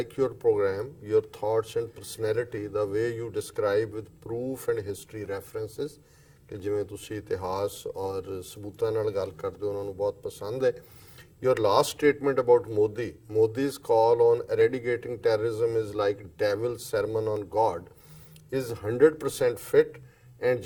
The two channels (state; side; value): identical; both; correlation 1.00